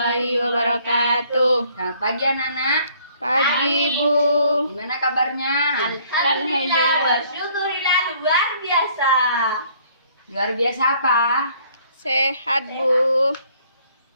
wabarakatuh. Selamat pagi anak-anak. Pagi, Bu. Gimana kabarnya? Alhamdulillah. Alhamdulillah luar biasa. Luar biasa apa? Sehat, Bu.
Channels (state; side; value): inverted; both; correlation -0.61